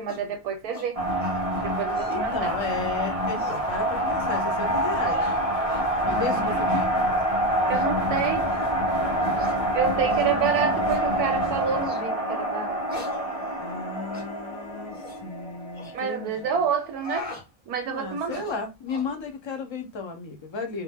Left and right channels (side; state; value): left; late; 1.6 ms